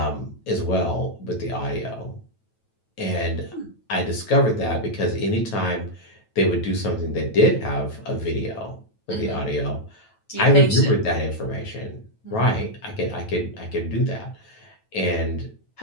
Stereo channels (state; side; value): late; right; 9.1 ms